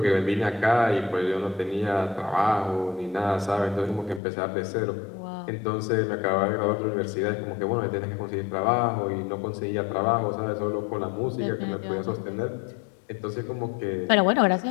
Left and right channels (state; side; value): drops out; right; at 4.2 s